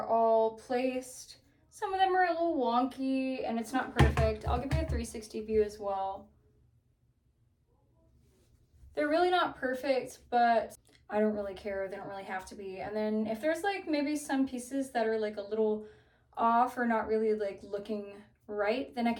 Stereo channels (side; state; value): both; identical; correlation 1.00